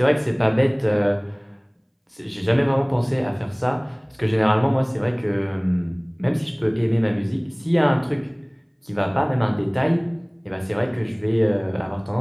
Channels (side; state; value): both; identical; correlation 1.00